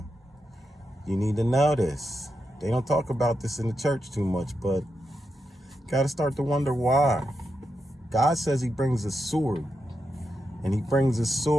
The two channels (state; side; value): normal; both; correlation 0.86